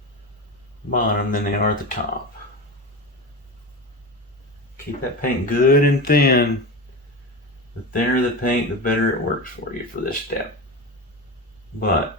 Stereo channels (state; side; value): normal; both; correlation 0.23